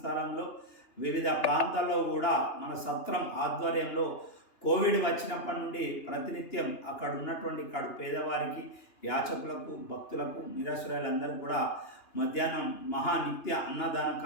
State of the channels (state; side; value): late; right; 2.9 ms